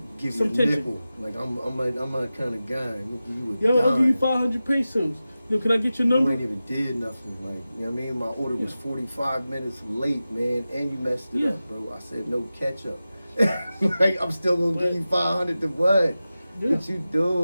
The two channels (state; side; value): inverted; both; correlation -0.94